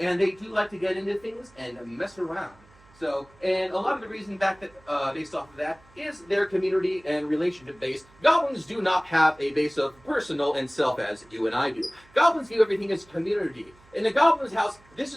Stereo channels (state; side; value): noise; right; hum, 27 dB below the sound